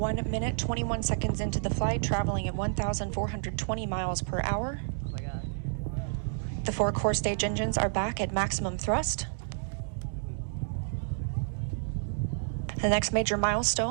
1 minute, 21 seconds into the flight, traveling at 1,420 miles per hour. Oh my God. The 4 core stage engines are back at maximum thrust. The next major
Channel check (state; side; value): silent; left; 58 dB below the other